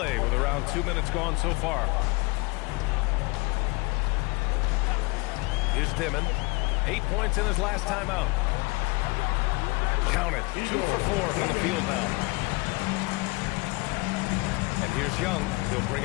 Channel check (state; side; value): quieter; right; 25.9 dB